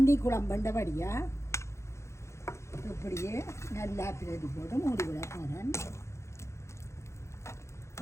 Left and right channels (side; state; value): right; late; 0.14 ms